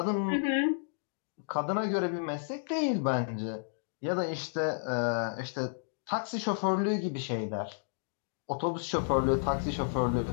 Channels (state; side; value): silent; right; digital silence